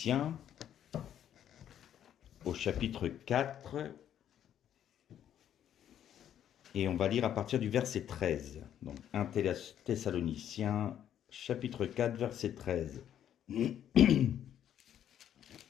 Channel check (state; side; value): quieter; right; 10.2 dB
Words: au chapitre 4, et on va lire à partir du verset 13. Donc 1 Thessaloniciens, chapitre 4, verset 13.